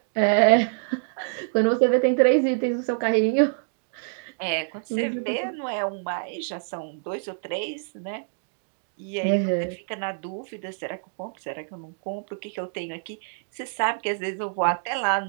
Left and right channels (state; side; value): silent; left; digital silence